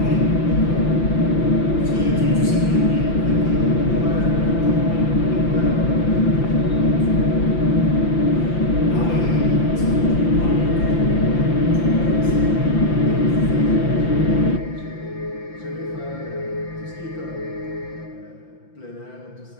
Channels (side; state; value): right; late; 5.9 ms